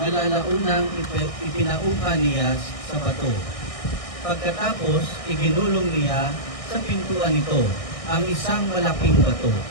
ipinaupa niya sa bato. Pagkatapos, iginulong niya sa pintuan nito ang isang malaking bato.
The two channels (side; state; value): right; late; 1.6 ms